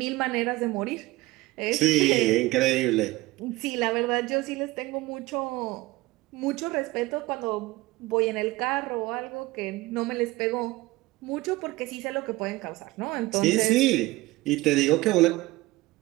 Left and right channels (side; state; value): left; quieter; 19.8 dB